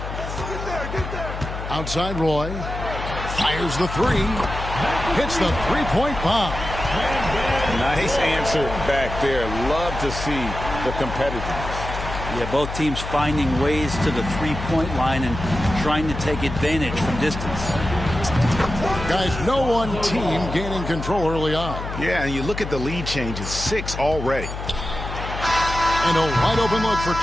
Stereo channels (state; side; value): noise; left; hum, 7 dB below the sound